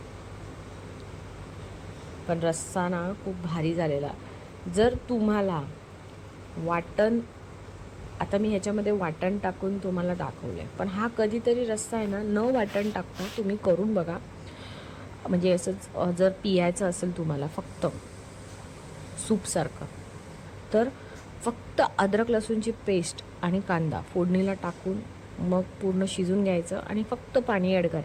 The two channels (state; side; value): identical; both; correlation 1.00